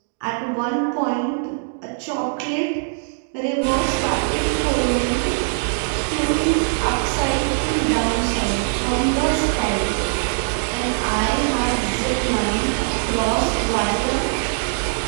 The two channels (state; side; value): silent; left; digital silence